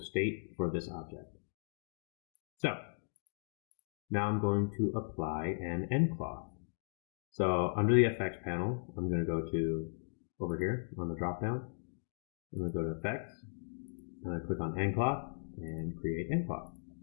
state for this object. So now I'm going to apply an nCloth. So under the effects panel, I'm going to go to over here on the drop down. I'm going to go to effects. I'm going to click on nCloth and create nCloth.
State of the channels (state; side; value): silent; right; digital silence